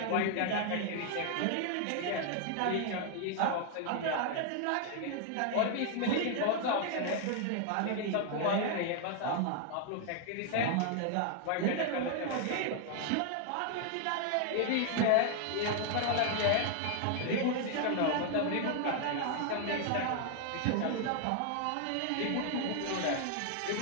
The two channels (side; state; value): both; different; correlation 0.00